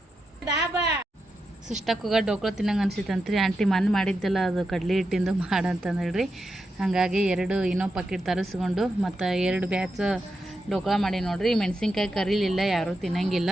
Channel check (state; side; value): normal; both; correlation 0.87